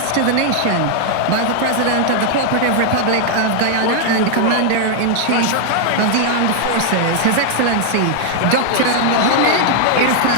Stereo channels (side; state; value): both; different; correlation 0.00